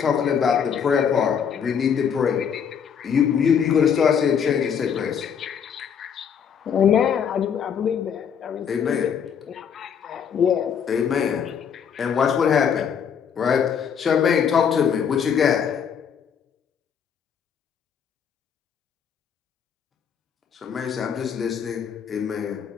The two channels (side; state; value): right; quieter; 7.5 dB